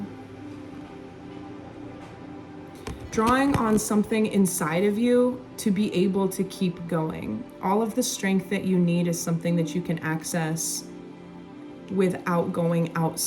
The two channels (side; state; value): both; identical; correlation 1.00